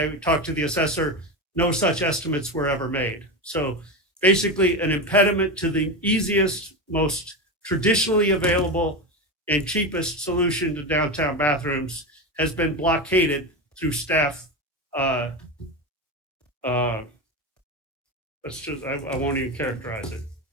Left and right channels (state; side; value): normal; both; correlation 0.18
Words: talked to the assessor. No such estimates were ever made. So basically an impediment to the easiest, most traditionally available and cheapest solution to downtown bathrooms has been blockaded through staff. I won't even characterize it.